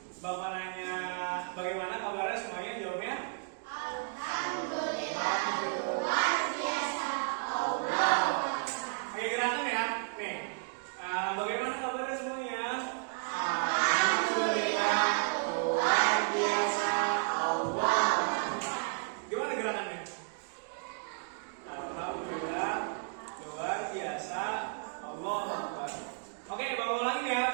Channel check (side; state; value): left; silent; digital silence